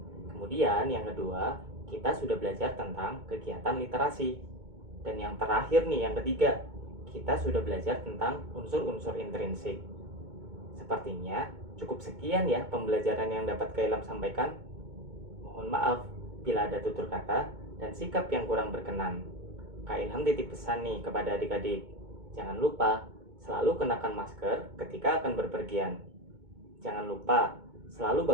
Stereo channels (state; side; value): late; left; 2.2 ms